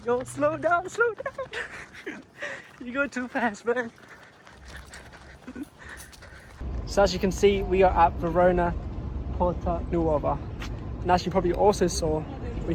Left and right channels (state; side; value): identical; both; correlation 1.00